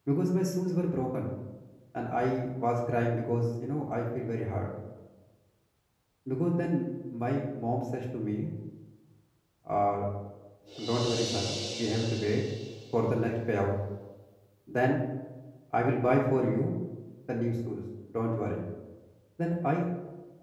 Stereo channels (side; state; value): both; identical; correlation 1.00